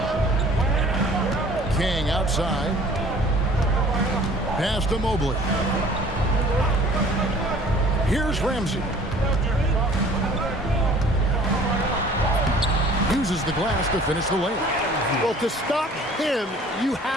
King outside. Pass to Mobley. Here's Ramsey. Uses the glass to finish the layup. Well, to stop him, you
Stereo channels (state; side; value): normal; both; correlation 0.50